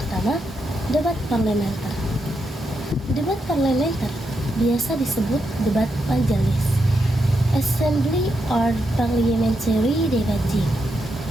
debat parlementer. Debat parlementer biasa disebut debat majelis. Assembly or parliamentary debating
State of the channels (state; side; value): normal; both; correlation 0.83